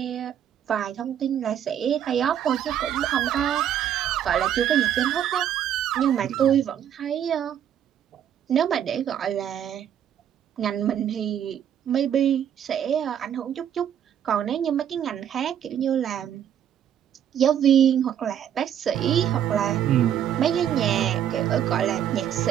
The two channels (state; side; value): quieter; left; 9.8 dB